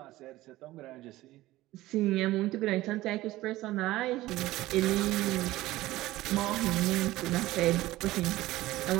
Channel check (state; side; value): quieter; left; 17.1 dB